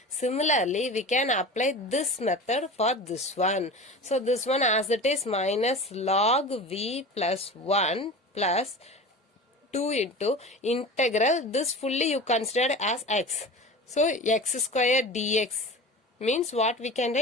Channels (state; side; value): normal; both; correlation 0.33